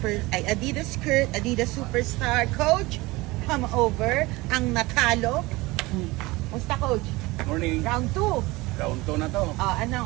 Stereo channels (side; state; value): left; quieter; 21.7 dB